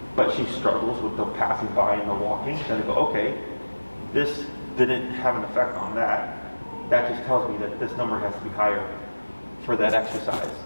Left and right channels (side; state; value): both; inverted; correlation -1.00